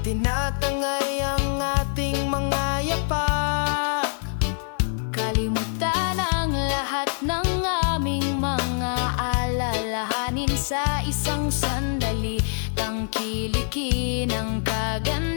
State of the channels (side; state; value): right; silent; digital silence